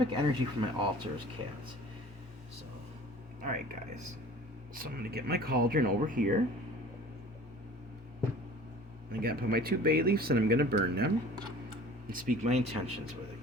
energy for my altar is cats. So, alright, guys. So I'm going to get my cauldron over here. I got to put my 2 bay leaves and I'm going to burn them and speak my intentions with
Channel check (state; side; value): normal; both; correlation 0.45